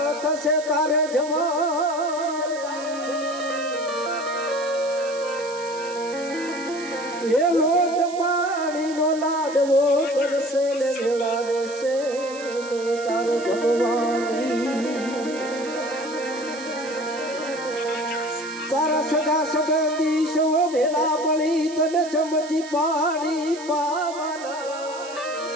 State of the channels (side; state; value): right; noise; hiss, 16 dB below the sound